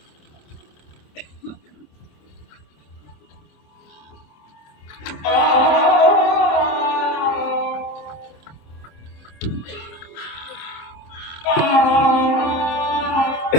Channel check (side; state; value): right; late; 26 ms